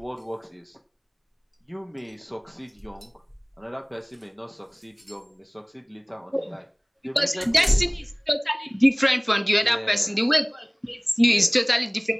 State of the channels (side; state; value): both; identical; correlation 1.00